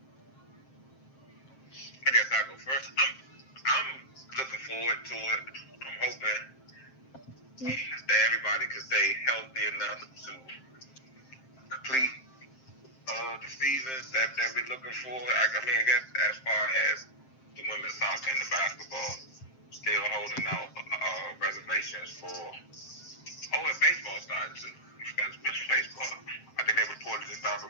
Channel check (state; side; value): late; right; 7.6 ms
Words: I guess I'll go first. I'm looking forward to it. I'm hoping that everybody can stay healthy enough to complete the seasons that we're looking for. I mean, I guess as far as the women's soccer and the basketball, still holding out reservations for. Oh, and baseball started too. You forgot to mention baseball. I think they reported they started